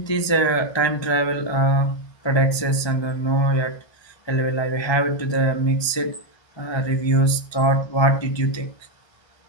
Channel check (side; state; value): right; late; 1.3 ms